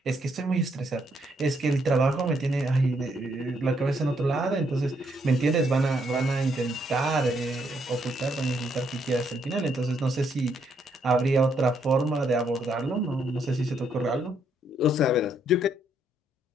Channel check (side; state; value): both; normal; correlation 0.73